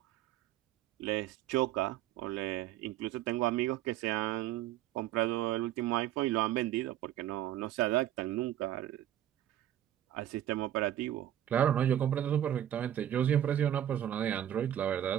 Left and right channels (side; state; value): left; quieter; 11.8 dB